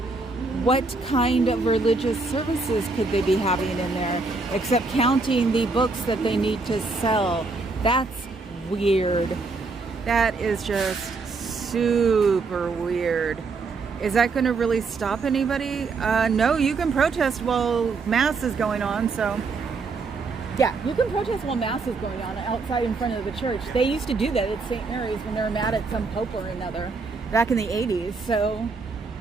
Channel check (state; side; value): quieter; left; 4.0 dB